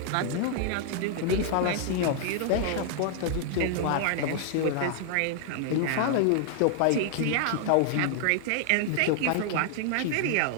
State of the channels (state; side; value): different; both; correlation 0.00